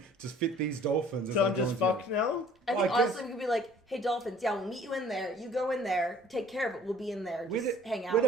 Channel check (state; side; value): normal; both; correlation 0.54